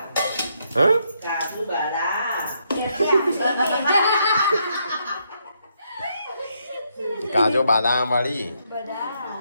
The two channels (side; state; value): both; inverted; correlation -0.76